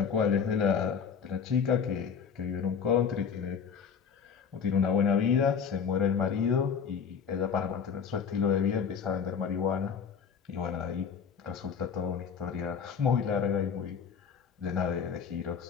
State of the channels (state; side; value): quieter; right; 6.7 dB